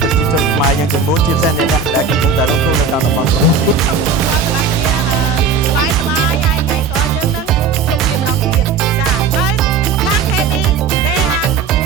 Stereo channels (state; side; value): quieter; left; 5.3 dB